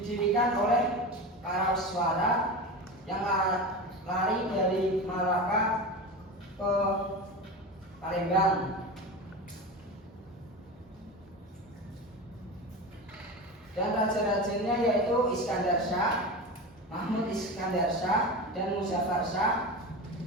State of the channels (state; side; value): normal; both; correlation 0.26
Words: oleh para suara yang lari dari Malaka ke Palembang. Dan raja-rajanya yaitu Iskandar Shah, Mahmud Iskandar Shah, dan Muzaffar Shah,